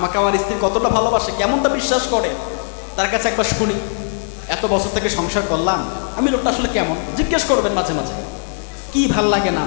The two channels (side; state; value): right; silent; digital silence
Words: আমার স্ত্রী কতটা ভালোবাসে, কেমনটা বিশ্বাস করে, তার কাছে একবার শুনি। এত বছর থেকে সংসার করলাম, আমি লোকটা আসলে কেমন জিজ্ঞেস করবেন মাঝে মাঝে। কি ভাল লাগে না